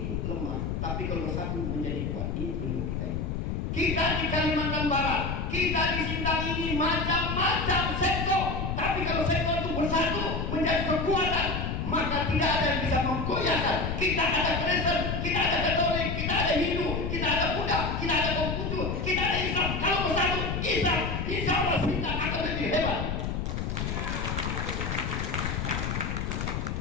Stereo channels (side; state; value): left; noise; rumble, 2 dB below the sound